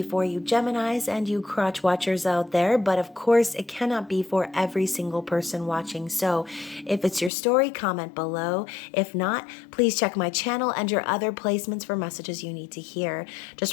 for you Geminis and you crotch watchers out there, but of course it cannot be for every single person watching. So if it's your story, comment below. If not, please check my channel and your other placements for messages you need to hear. Just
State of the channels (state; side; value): drops out; right; at 7.3 s